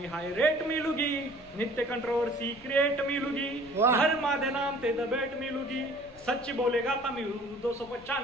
ਹਾਈ ਰੇਟ ਮਿਲੂਗੀ ਨਿੱਤ ਕੰਟਰੋਵਰਸੀ ਕ੍ਰੀਏਟ ਮਿਲੂਗੀ ਧਰਮਾਂ ਦੇ ਨਾਮ ਤੇ ਦਬੇਟ ਮਿਲੂਗੀ सच्ची बोलेगा तो मिलू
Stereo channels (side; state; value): left; noise; rumble, 24 dB below the sound